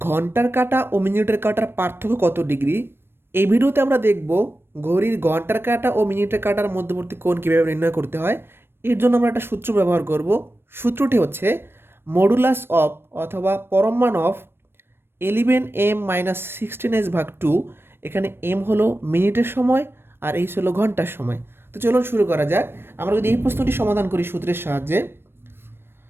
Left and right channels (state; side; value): late; left; 0.11 ms